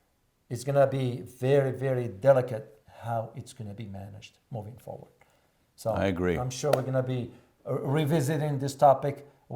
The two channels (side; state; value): both; identical; correlation 1.00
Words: is going to be very, very delicate how it's going to be managed moving forward. So I agree. I'm sure we're going to be revisiting this topic